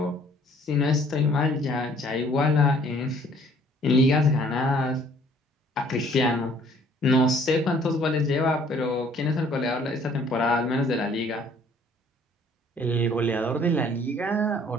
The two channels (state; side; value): normal; both; correlation 0.58